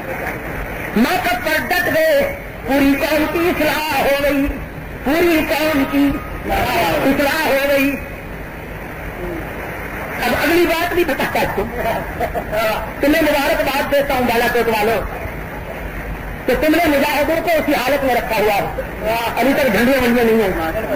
موقف پر ڈٹ گئے. پوری قوم کی اصلاح ہو گئی, پوری قوم کی اصلاح ہو گئی. اب اگلی بات بھی بتاتا ہوں, تمہیں مبارکباد دیتا ہوں بالا کوٹ والوں کہ تم نے مجاہدوں کو اسی حالت میں رکھا ہوا ہے. ابھی تک جھنڈیاں منڈیاں نہیں ہیں,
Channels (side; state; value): both; identical; correlation 1.00